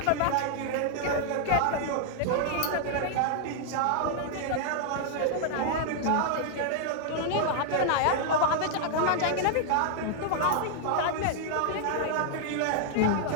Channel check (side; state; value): both; different; correlation -0.01